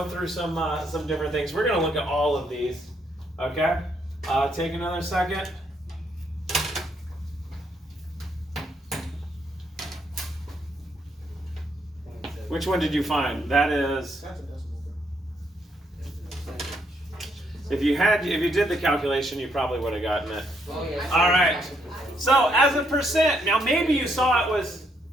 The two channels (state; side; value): normal; both; correlation 0.74